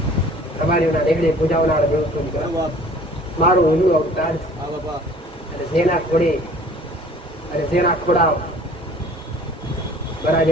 તમારી દેખડે પૂજાવનારો દેવ છું દીકરા. મારું હિન્દુ અવતાર છે. અને જેના ખોડે અને જેના ખોડાવ બરા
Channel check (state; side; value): normal; both; correlation 0.50